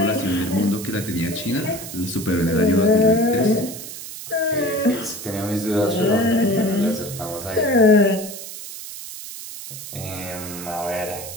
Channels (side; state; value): right; noise; hiss, 11 dB below the sound